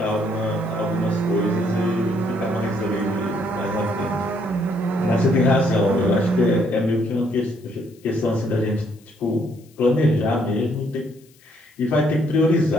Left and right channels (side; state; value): left; noise; hiss, 30 dB below the sound